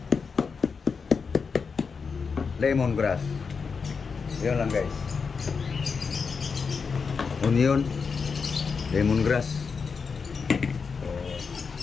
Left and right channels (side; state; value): right; quieter; 5.4 dB